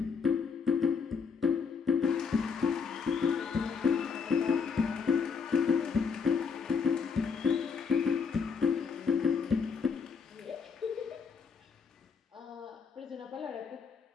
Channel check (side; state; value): right; quieter; 5.7 dB